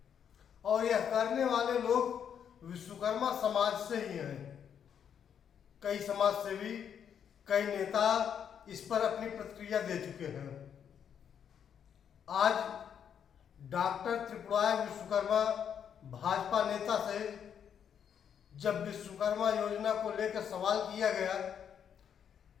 और यह करने वाले लोग विश्वकर्मा समाज से ही हैं। कई समाज सेवी, कई नेता इस पर अपनी प्रतिक्रिया दे चुके हैं। आज डॉक्टर त्रिपुराय विश्वकर्मा भाजपा नेता से जब विश्वकर्मा योजना को लेकर सवाल किया गया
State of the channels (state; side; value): quieter; right; 8.2 dB